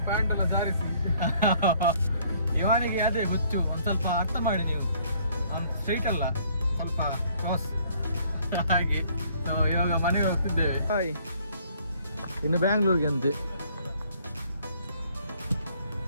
ಪ್ಯಾಂಟ್ ಎಲ್ಲ ಜಾರಿಸಿ ಇವನಿಗೆ ಅದೇ ಹುಚ್ಚು. ಒಂದು ಸ್ವಲ್ಪ ಅರ್ಥ ಮಾಡಿ ನೀವು, ಅವ್ನು ಸ್ಟ್ರೈಟ್ ಅಲ್ಲ, ಸ್ವಲ್ಪ ಕ್ರಾಸ್ ಹಾಗೆ. ಇವಾಗ ಮನೆಗೆ ಹೋಗ್ತಿದ್ದೇವೆ. ಹಾಯ್, ಇನ್ನು ಬ್ಯಾಂಗ್ಳೂರ್ಗೆ ಅಂತೆ.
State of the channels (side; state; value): both; inverted; correlation -0.61